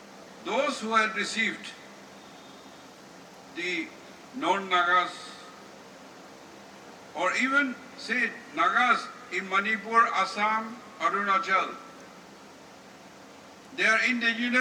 those who had received the non-Nagas, or even say Nagas in Manipur, Assam, Arunachal, they are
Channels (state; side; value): identical; both; correlation 1.00